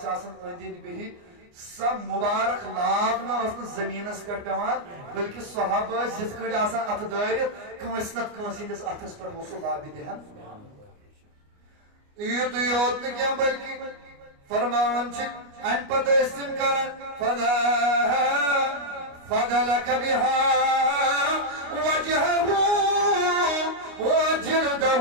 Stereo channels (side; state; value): left; late; 29 ms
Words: آسان أنٛدۍ أنٛدۍ بِہِتھ سب مبارک لاب نہ زمینس پہ پیوان بلکہ صحابہ جت کڑ آسان ات دٲرِتھ کٲنٛسہِ نتہٕ کٲنٛسہِ ہٕنٛدِس اتھس پٮ۪ٹھ اوس سُہ لابہِ دِہان یُتُے یوت نہٕ کینٛہہ بلکہ فرماوان چھِ امہِ پتہٕ ٲسۍ تِم کران فضلك بها وجهه